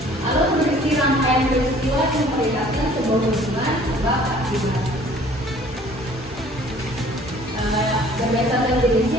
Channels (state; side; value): normal; both; correlation 0.53